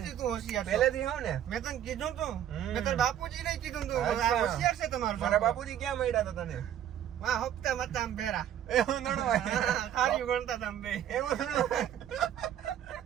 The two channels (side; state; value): left; quieter; 10.6 dB